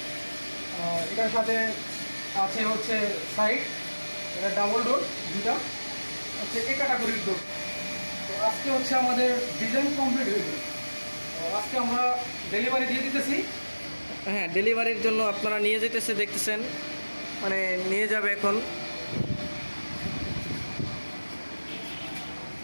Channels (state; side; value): inverted; both; correlation -1.00